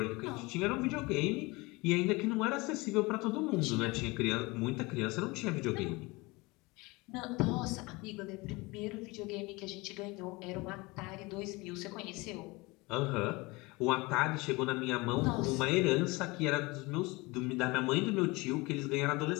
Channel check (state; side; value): quieter; right; 24.1 dB